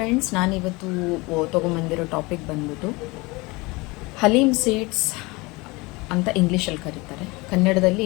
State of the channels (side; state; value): right; quieter; 24.3 dB